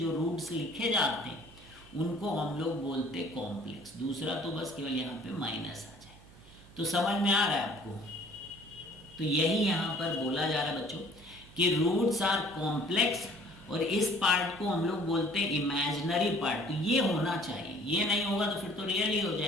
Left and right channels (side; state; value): right; noise; hum, 23 dB below the sound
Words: रूट्स लिखे जाते हैं उनको हम लोग बोलते कॉम्प्लेक्स। दूसरा तो बस केवल यहाँ पे माइनस आ जाए। तो समझ में आ रहा है आपको। तो यही यहाँ पर बोला जा रहा है बच्चों कि रूट्स आर कॉम्प्लेक्स, और इस पार्ट को हम लोग बोलते हैं इमेजिनरी पार्ट। तो ये होना चाहिए, ये नहीं होगा तो फिर तो रियल ही हो